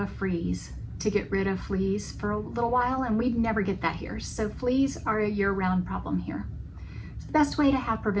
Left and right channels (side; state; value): both; identical; correlation 1.00